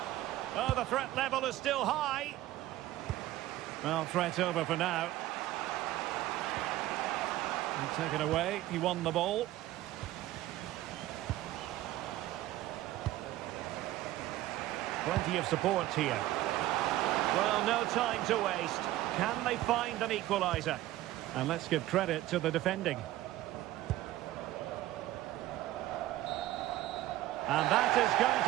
Oh, the threat level is still high. Well, threat over for now. And taken away. He won the ball. Plenty of support here. Well, no time to waste. Can they find an equaliser? And let's give credit to the defending. And that is going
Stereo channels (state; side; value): quieter; left; 15.3 dB